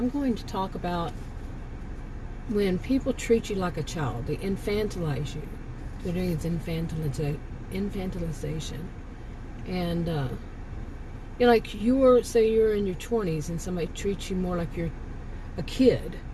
going to talk about when people treat you like a child. They infantilize you. They're doing is infantilization. And, like say you're in your 20s and somebody treats you more like you're a kid,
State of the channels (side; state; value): both; identical; correlation 1.00